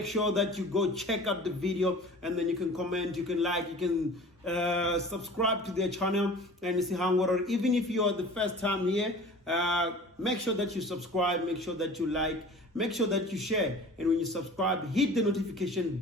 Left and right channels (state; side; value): normal; both; correlation 0.42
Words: sure that you go check out the video and then you can comment, you can like, you can subscribe to their channel and see how, or even if you are the first time here, make sure that you subscribe, make sure that you like, make sure that you share, and when you subscribe, hit the notification